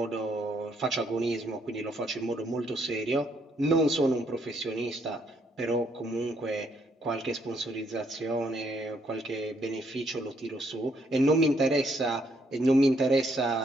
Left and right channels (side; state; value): both; normal; correlation 0.72